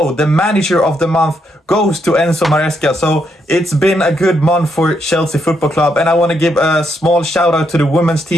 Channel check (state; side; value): normal; both; correlation 0.78